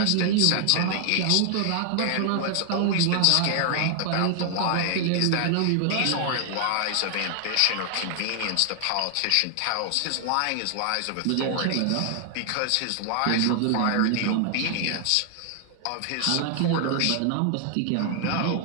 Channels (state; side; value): different; both; correlation 0.00